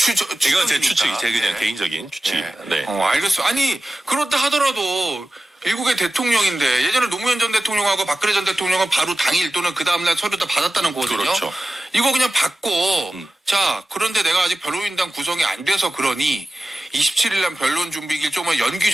이건 제 추측이 제 그냥 개인적인 추측입니다. 네. 알겠어요. 아니 그렇다 하더라도 미국의 대통령인데 예전에 노무현 전 대통령하고 박근혜 전 대통령은 바로 당일 또는 그 다음날 서류 다 받았다는 거거든요. 그렇죠. 이거 그냥 받고 자 그런데 내가 아직 변호인단 구성이 안 돼서 그러니 27일 날 변론 준비길 좀만 연기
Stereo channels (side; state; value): both; normal; correlation 0.95